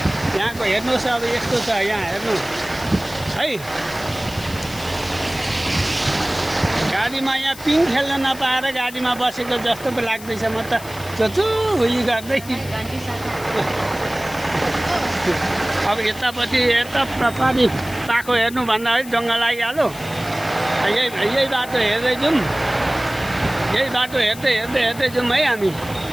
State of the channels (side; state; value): left; noise; hiss, 16 dB below the sound